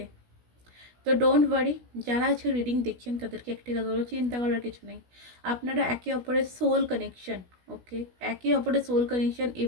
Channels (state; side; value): late; left; 16 ms